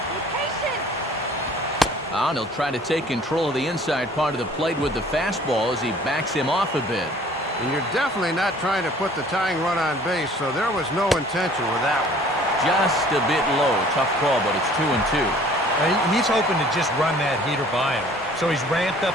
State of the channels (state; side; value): normal; both; correlation 0.53